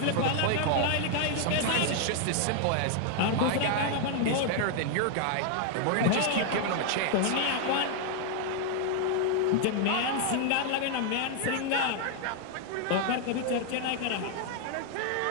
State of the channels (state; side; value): different; both; correlation 0.00